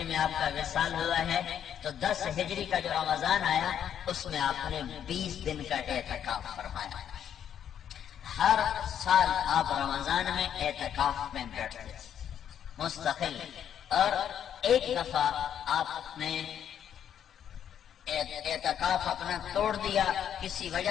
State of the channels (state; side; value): quieter; right; 9.3 dB